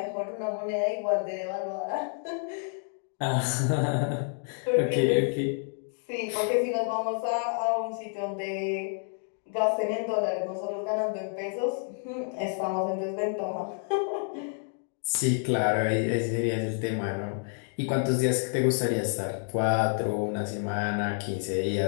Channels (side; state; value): right; silent; 59 dB below the other